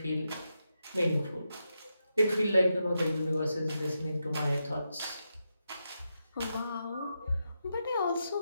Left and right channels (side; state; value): both; inverted; correlation -0.86